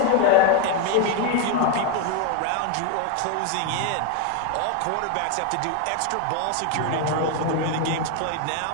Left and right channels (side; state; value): both; different; correlation 0.01